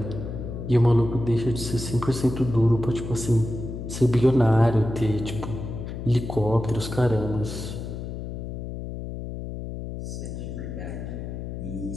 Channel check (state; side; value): noise; left; hum, 7 dB below the sound